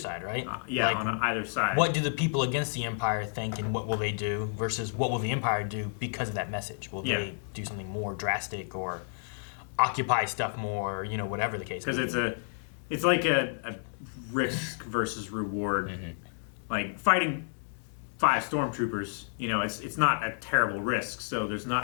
right? Yeah, like, on either side. What do the people against the Empire think, and what will they do versus what will the Empire do because of that message? Will they do something more drastic or occupy stuff more? You know, whatever the case. Because it's like a risk versus reward. Like fighting 5 stormtroopers, you know, it's not a terrible risk, so there's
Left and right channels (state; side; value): silent; right; digital silence